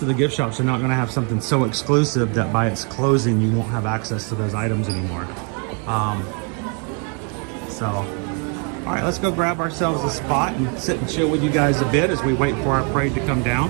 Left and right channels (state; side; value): quieter; left; 38.1 dB